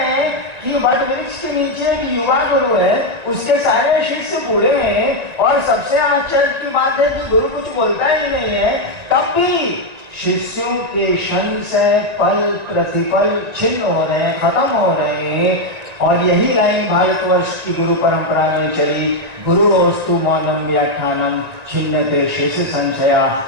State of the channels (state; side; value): late; left; 1.9 ms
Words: हैं कि वट वृक्ष के नीचे एक युवा गुरु है, उसके सारे शिष्य बूढ़े हैं, और सबसे आश्चर्य की बात है कि गुरु कुछ बोलता ही नहीं है, तब भी शिष्यों के संशय पल प्रतिपल छिन्न हो रहे हैं, खत्म हो रहे हैं। और यही लाइन भारतवर्ष की गुरु परंपरा में चली, गुरुस्तु मौनम व्याख्यानम छिन्नते शेष संशया।